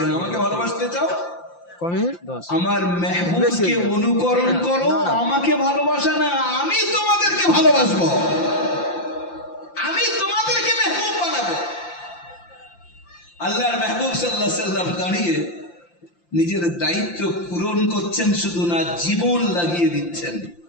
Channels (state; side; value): late; right; 5.8 ms